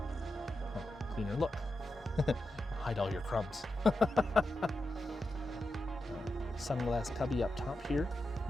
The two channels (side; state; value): both; normal; correlation 0.89